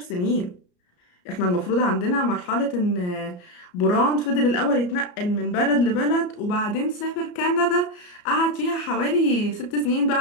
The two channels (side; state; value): right; late; 34 ms